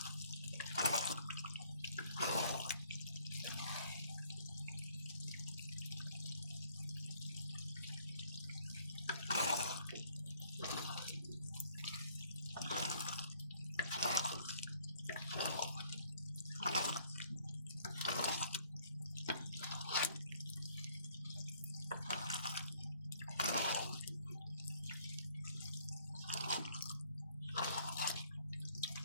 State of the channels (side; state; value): both; inverted; correlation -0.61